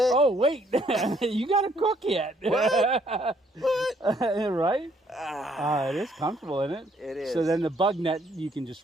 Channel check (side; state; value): both; normal; correlation 0.67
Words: Oh, wait. You got to cook yet. What? Right? It is comfortable, isn't it? It is. So then the bug net, you can